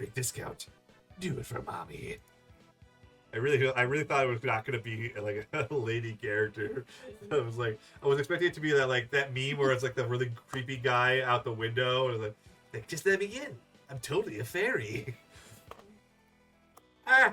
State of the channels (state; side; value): identical; both; correlation 1.00